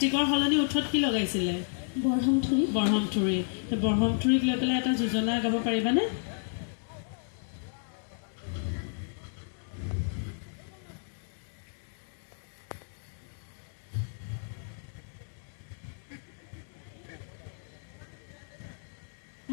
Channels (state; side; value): silent; right; 57 dB below the other